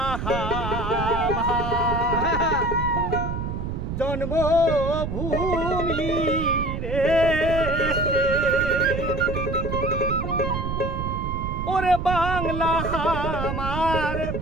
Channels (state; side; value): noise; right; rumble, 4 dB below the sound